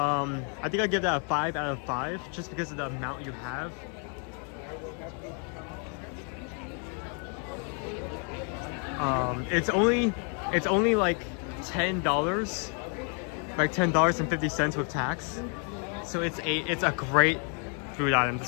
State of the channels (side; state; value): right; quieter; 39.9 dB